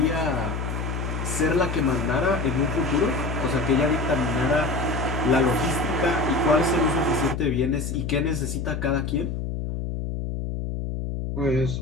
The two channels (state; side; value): noise; left; hum, 4 dB below the sound